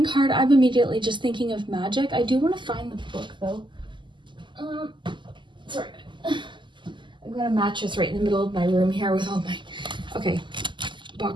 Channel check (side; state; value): left; late; 0.23 ms